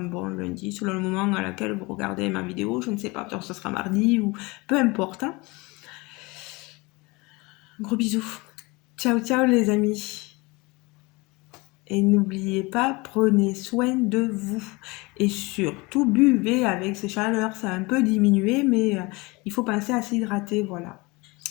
bon lundi, selon le moment à laquelle vous regardez ma vidéo. Je ne sais pas, peut-être que ce sera mardi ou peu importe, hein. Gros bisous. Ciao, ciao les amis. Et n'oubliez pas, prenez soin de vous. Et surtout, buvez avec ces chaleurs. Ça a un peu diminué, mais il faut penser à s'hydrater, voilà.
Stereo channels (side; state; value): right; quieter; 24.9 dB